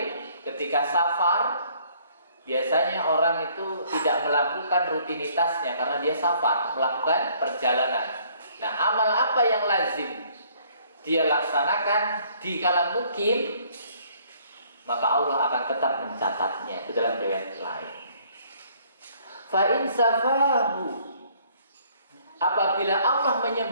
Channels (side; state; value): both; inverted; correlation -0.61